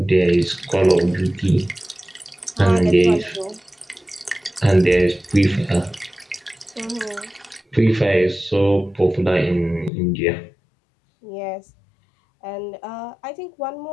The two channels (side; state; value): right; drops out; at 9.9 s